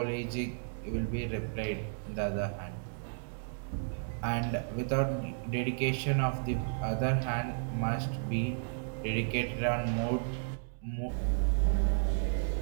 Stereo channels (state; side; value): silent; left; digital silence